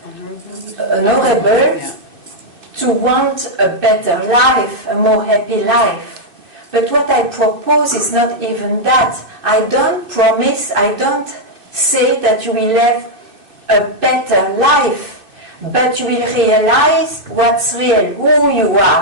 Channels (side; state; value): left; late; 2.6 ms